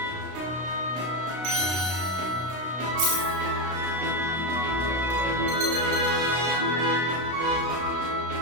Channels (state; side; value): late; left; 33 ms